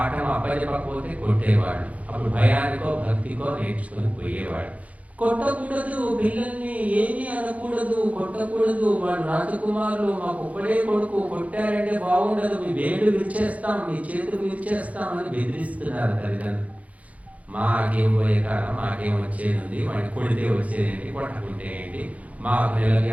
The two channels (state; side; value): late; left; 0.068 ms